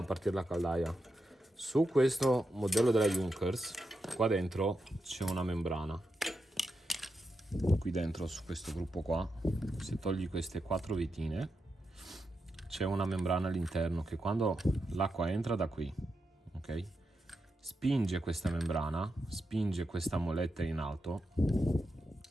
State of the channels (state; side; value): normal; both; correlation 0.86